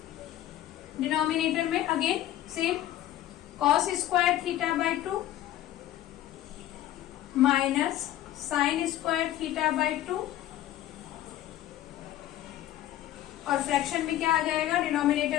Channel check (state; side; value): quieter; right; 13.3 dB